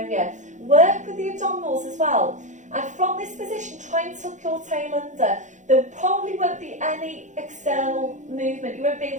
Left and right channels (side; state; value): left; late; 0.35 ms